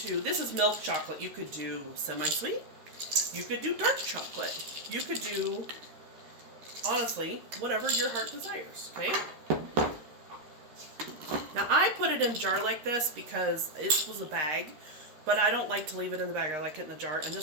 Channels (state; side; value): late; left; 13 ms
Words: this is milk chocolate. You could do semi-sweet. You could do dark chocolate. You could do, honestly, whatever your heart desires, okay? Now I put it in a jar like this because it was a bag. But I don't like to leave it in the bag. I like it in the jar. And